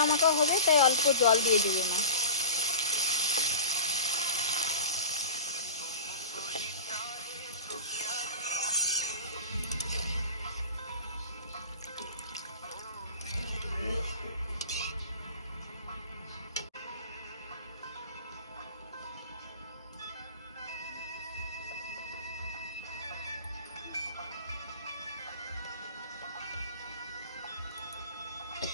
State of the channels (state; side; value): inverted; both; correlation -0.35